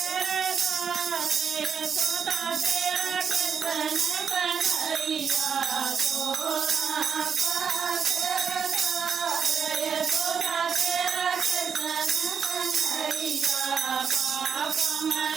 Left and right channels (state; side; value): quieter; left; 6.7 dB